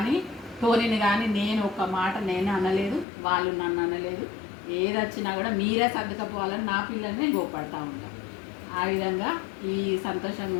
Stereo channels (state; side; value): drops out; right; at 3.1 s